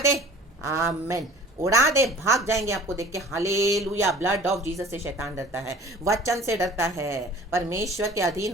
आमेन. उड़ा दे, भाग जाएंगे आपको देख के. हालेलुया. ब्लड ऑफ जीसस से शैतान डरता है, वचन से डरता है. परमेश्वर के अधीन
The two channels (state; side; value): normal; both; correlation 0.46